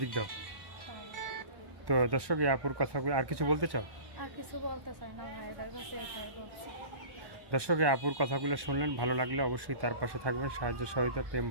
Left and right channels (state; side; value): late; left; 1.2 ms